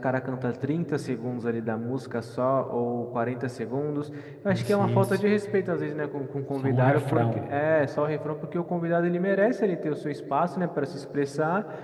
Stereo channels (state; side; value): identical; both; correlation 1.00